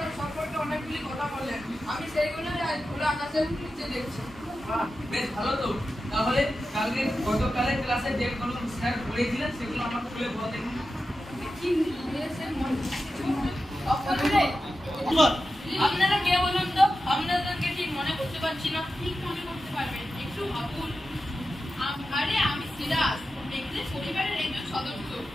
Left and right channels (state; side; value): normal; both; correlation 0.92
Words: সম্পর্কে অনেকগুলি কথা বললেন। আমি সেইগুলো আজ খোলা আকাশের নিচে দেখছি। বেশ ভালো তো। তাহলে গতকালের ক্লাসে যেগুলো স্যার পড়িয়েছিলেন সেগুলো আমাকে খুলে বল দেখুন। আপনারা কে বলুন তো? আপনাদেরকে ঠিক মনে করতে পারছি না। ঠিক মনে করতে পারবেন, একটু ভাবুন। আরে আমি সিরাজ, মেঘদের পরিবারের একজন সদস্য।